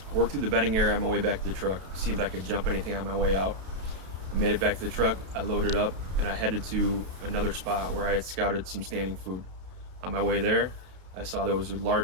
I worked through the bedding area on my way back to the truck, see if I could jump anything on my way out. I made it back to the truck, I loaded up, and I headed to another spot where I had scouted some standing food. On my way there, I saw there was a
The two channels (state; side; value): late; left; 32 ms